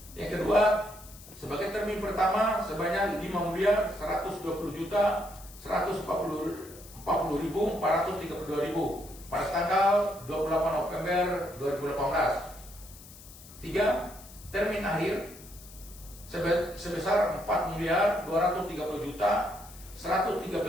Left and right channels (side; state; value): left; noise; hiss, 19 dB below the sound